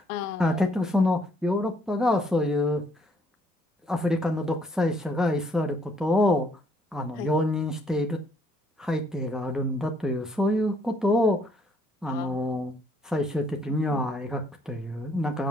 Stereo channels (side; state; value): both; normal; correlation 0.67